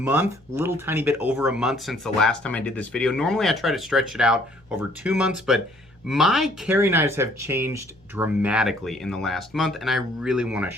little tiny bit over a month since the last time I did this video. Normally I try to stretch it out over 2 months, but my carry knives have changed dramatically in the last month, and I really want to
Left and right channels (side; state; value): both; normal; correlation 0.61